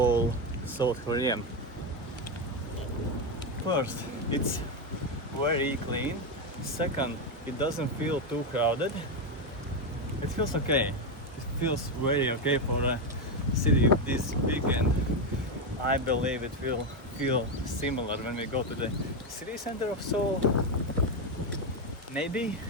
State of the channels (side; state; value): both; normal; correlation 0.09